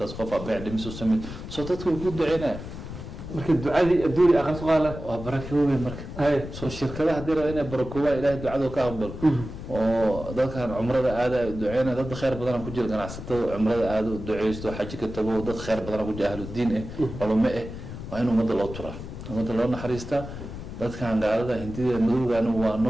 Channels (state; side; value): noise; left; rumble, 10 dB below the sound